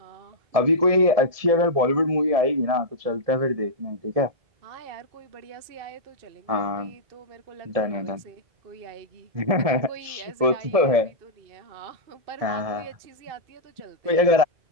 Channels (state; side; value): late; left; 1.7 ms